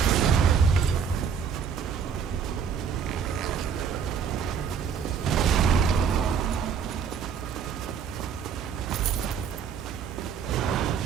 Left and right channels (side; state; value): left; quieter; 7.0 dB